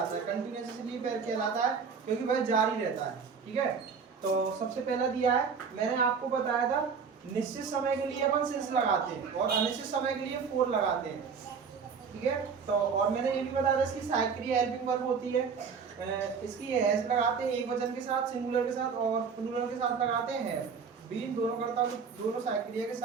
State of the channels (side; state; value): left; quieter; 5.9 dB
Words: है। कंटीन्यूअस इसलिए कहलाता है क्योंकि वह जारी रहता है। ठीक है, तो सबसे पहला दिया है, मैंने आपको बताया था निश्चित समय के लिए अपन सिंस लगाते हैं और अनिश्चित समय के लिए फोर लगाते हैं। ठीक है, तो और मैंने ये भी बताया था इसकी सहायक हेल्पिंग वर्ब होती है। इसकी हैज लगाते हैं एक वचन के साथ, सिंगुलर के साथ, और प्लूरल के साथ लगाते हैं बीन। दोनों करता दोनों सहायक क्रिया के